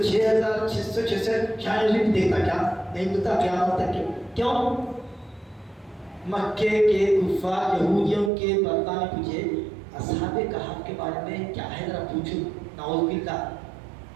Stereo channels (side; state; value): left; drops out; at 8.3 s